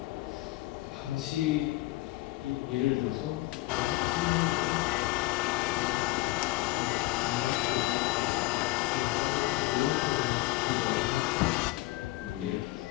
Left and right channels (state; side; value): quieter; right; 19.9 dB